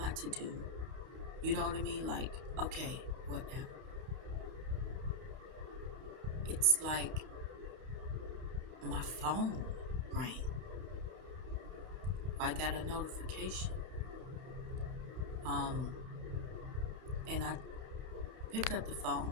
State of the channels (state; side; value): late; left; 31 ms